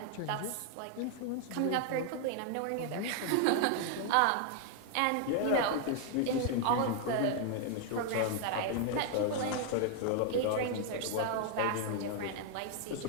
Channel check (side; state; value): both; different; correlation 0.00